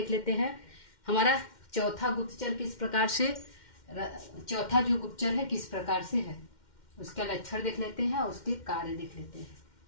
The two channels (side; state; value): right; late; 2.1 ms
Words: लेते हैं। हमारा चौथा गुप्तचर किस प्रकार से, चौथा जो गुप्तचर है किस प्रकार से है, उसका लक्षण देख लेते हैं और उसके कार्य देख लेते हैं।